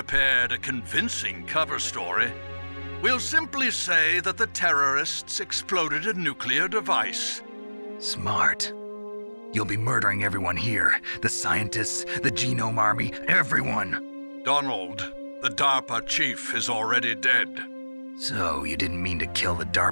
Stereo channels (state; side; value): inverted; both; correlation -1.00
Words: a convincing cover story. We'll simply say that the terrorists exploded a nuclear device. Smart. You'll be murdering everyone here. The scientists, the Genome Army, everyone. Donald, the DARPA chief, is already dead. So you didn't mean to kill the